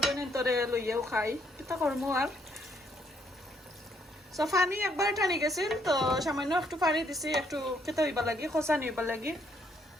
বোনের তরে লইয়াও খাই কিতা করবো আর সো পানি একবার টানি গেছিল তো সামান্য একটু পানি দিছি একটু খেতে হইবা লাগি খোসা নিবা লাগি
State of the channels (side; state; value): both; normal; correlation 0.71